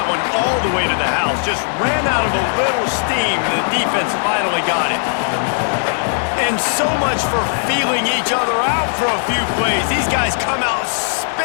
one all the way to the house. Just ran out of a little steam, and the defense finally got it. And so much for feeling each other out for a few plays. These guys come out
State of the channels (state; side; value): silent; right; digital silence